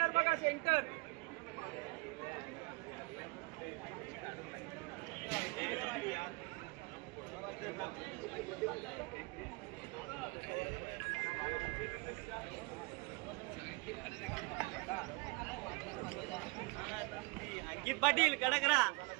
बघा, सेंटर. अंकित पाटील कडकरा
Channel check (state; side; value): quieter; left; 28.0 dB